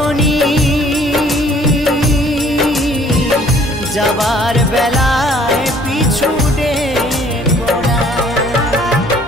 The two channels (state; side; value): normal; both; correlation 0.58